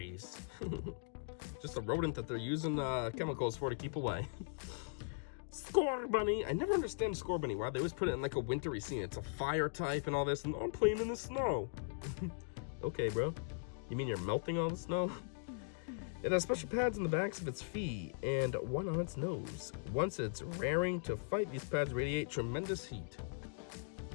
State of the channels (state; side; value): silent; right; digital silence